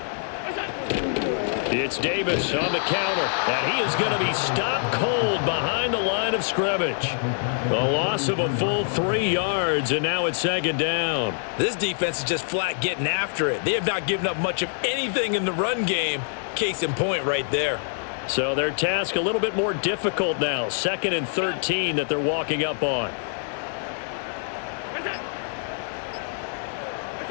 It's Davis on the counter, and he is going to be stopped cold behind the line of scrimmage. A loss of a full 3 yards, and now it's second down. This defense is just flat getting after it. They have not given up much of anything in the run game. Case in point right there. So their task a little bit more difficult now. 2nd and 13 that they're walking up on.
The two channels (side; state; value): right; silent; digital silence